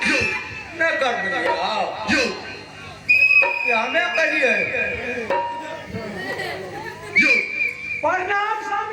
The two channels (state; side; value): identical; both; correlation 1.00